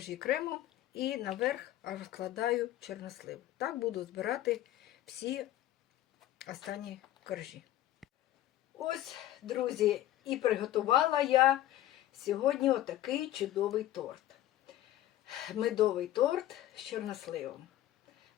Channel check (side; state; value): right; quieter; 13.7 dB